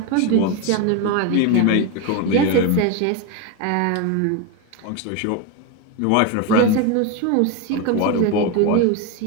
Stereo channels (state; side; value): different; both; correlation 0.03